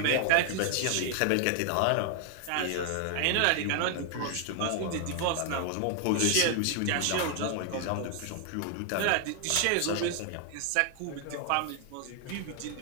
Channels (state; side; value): different; both; correlation 0.00